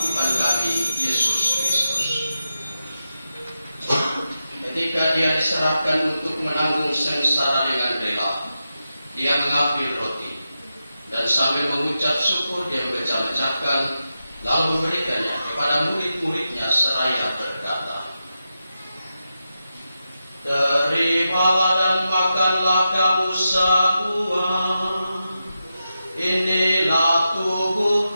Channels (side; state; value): both; inverted; correlation -0.89